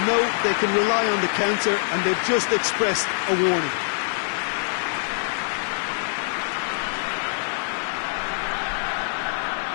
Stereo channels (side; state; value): right; silent; digital silence